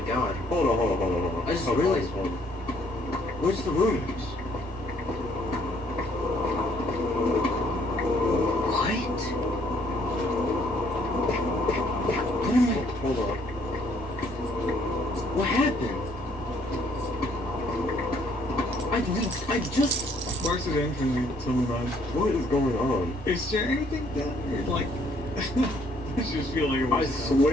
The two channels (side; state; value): left; noise; rumble, 24 dB below the sound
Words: god. Hold on. I just Hold on, realized- hold on. Where's the rooms? What? What am I... Hold on. What happened? I just... Where's the entrance? Tell me about it. What is going on? Is there anything down there? Like... I just feel like it I was...